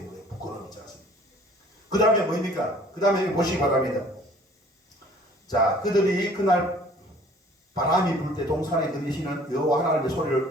거예요. 부끄러움이 있지 않습니까? 그 다음에 뭡니까? 그 다음에 보시기 바랍니다. 자, 그들이 그날 바람이 불 때 동산에 들리시는 여호와 하나님의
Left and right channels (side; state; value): both; normal; correlation 0.53